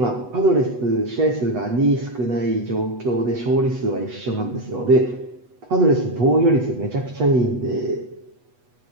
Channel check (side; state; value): left; late; 8.1 ms